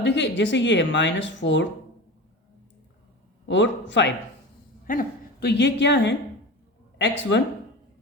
देखिए जैसे ये है -4 और 5, है ना, तो ये क्या है x1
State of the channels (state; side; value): normal; both; correlation 0.30